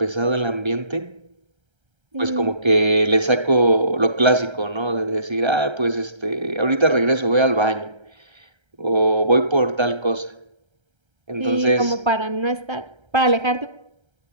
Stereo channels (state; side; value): late; left; 1.3 ms